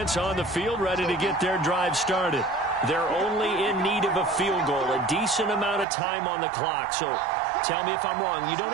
on the field, ready to get their drive started. They're only in need of a field goal, a decent amount of time on the clock. So tell me if I'm wrong. You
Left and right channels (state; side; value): drops out; left; at 5.9 s